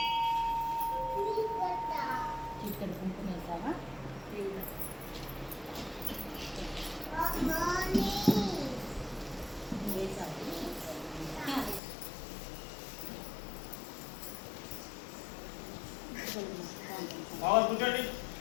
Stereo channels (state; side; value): drops out; right; at 11.8 s